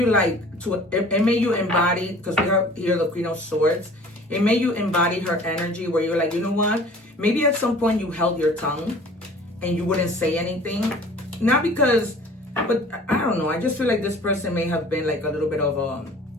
it made you embody, because we have here the Queen of Swords. It made you embody her energy where you're like, you know what? Maybe at some point you held your tongue and you wouldn't say anything. Not because, but I don't know. I just feel like this person may have been like a little bit of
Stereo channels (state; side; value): normal; both; correlation 0.48